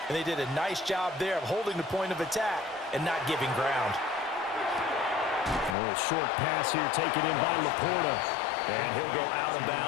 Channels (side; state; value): right; drops out; at 5.8 s